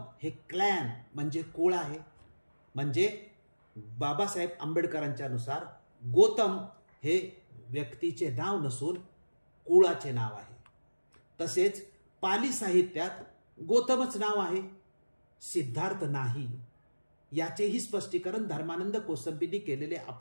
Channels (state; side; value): inverted; both; correlation -1.00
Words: हे क्लॅन म्हणजे कुळ आहे. म्हणजे बाबासाहेब आंबेडकरांच्या नुसार गौतम हे व्यक्तीचे नाव नसून कुळाचे नाव आहे. तसेच पाली साहित्यात गौतमच नाव आहे, सिद्धार्थ नाही. याचेही स्पष्टीकरण धर्मानंद कोसंबींनी केलेले